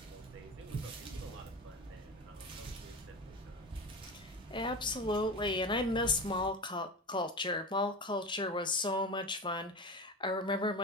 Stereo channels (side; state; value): both; normal; correlation 0.27